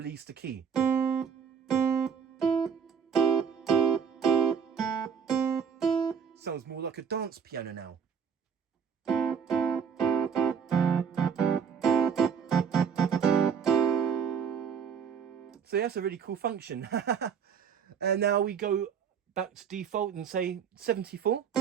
the key. Sounds more like a dance piano now. So that's a really cool function. And now we go back to default and say 74.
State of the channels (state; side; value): quieter; left; 7.1 dB